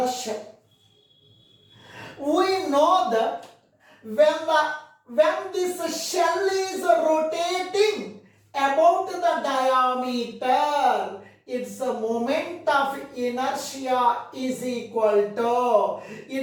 shell. We know that when this shell is rotating about the diameter, its a moment of inertia is equal to,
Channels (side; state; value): both; identical; correlation 1.00